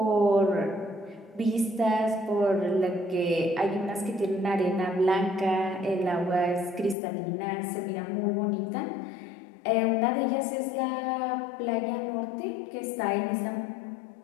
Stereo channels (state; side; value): drops out; right; at 7.0 s